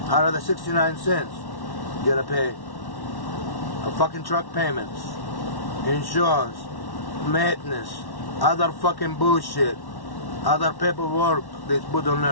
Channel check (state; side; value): late; right; 1.1 ms